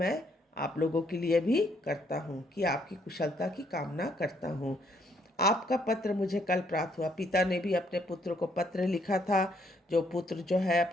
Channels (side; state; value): both; normal; correlation 0.70